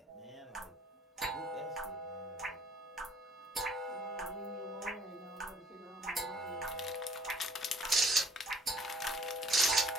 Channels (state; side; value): normal; both; correlation 0.58